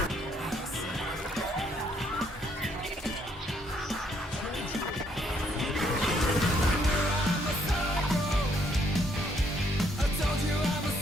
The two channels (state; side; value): normal; both; correlation 0.69